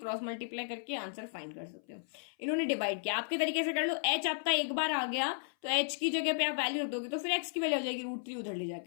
मल्टीप्लाई करके आंसर फाइंड कर सकते हो। इन्होंने डिवाइड किया, आपके तरीके से कर लो। h आपका एक बार आ गया तो h की जगह पे आप वैल्यू रख दोगे तो फिर x की वैल्यू हो जाएगी √3 उधर ले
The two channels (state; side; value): silent; right; 55 dB below the other